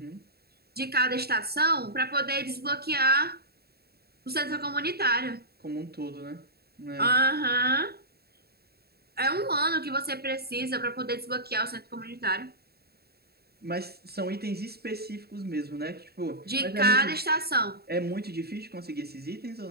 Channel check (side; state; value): left; late; 0.46 ms